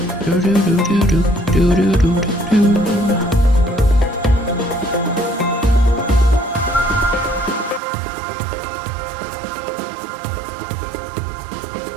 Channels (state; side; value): drops out; left; at 7.8 s